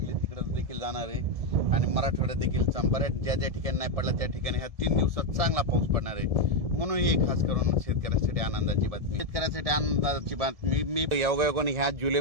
तिकडे देखील जाणार आहे आणि मराठवाड्यात देखील बऱ्याच ज्या ठिकाणी नाही पडला त्या ठिकाणी ह्या 3 दिवसात चांगला पाऊस पडणार आहे। म्हणून ही खास करून शेतकऱ्यासाठी आनंदाची बातमी। शेतकऱ्यासाठी आनंदाची बातमी मी योगायोगाने ह्या जुलै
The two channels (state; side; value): late; left; 1.7 ms